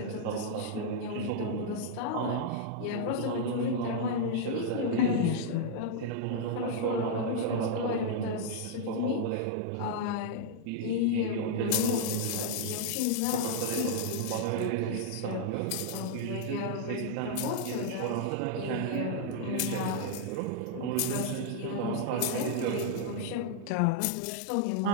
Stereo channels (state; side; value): different; both; correlation -0.01